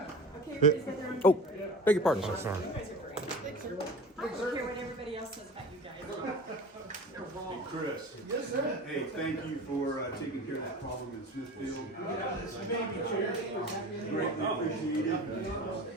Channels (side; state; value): both; normal; correlation 0.34